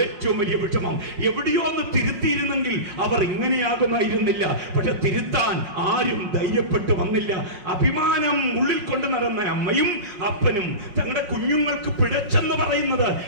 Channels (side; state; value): left; late; 5.5 ms